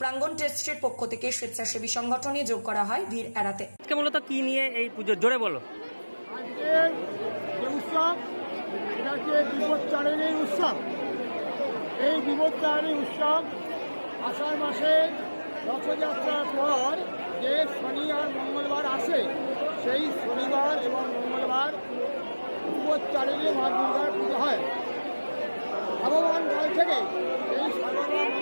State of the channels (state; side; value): inverted; both; correlation -1.00